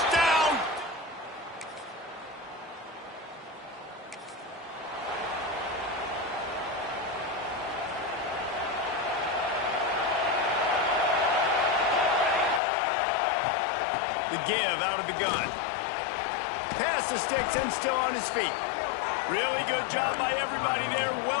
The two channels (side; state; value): right; drops out; at 12.6 s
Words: The give out of the gun. Pass the sticks and still on his feet. Really good job by everybody there.